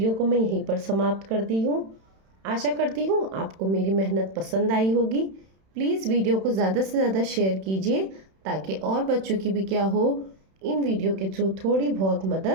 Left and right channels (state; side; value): late; left; 31 ms